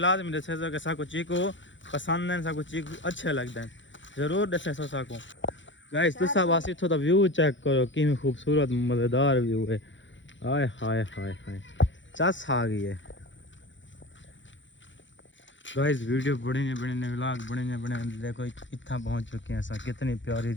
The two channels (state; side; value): late; right; 0.54 ms